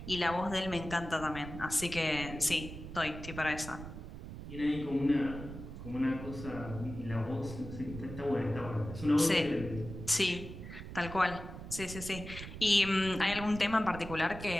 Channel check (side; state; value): right; noise; rumble, 10 dB below the sound